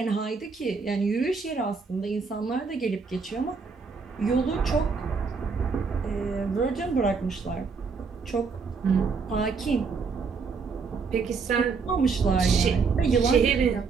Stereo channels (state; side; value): quieter; left; 5.0 dB